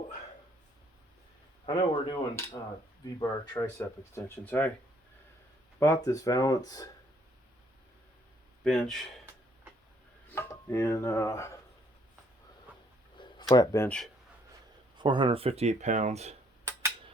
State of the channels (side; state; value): both; normal; correlation 0.66